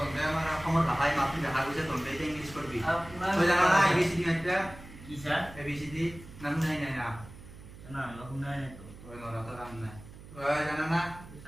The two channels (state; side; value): noise; right; hum, 17 dB below the sound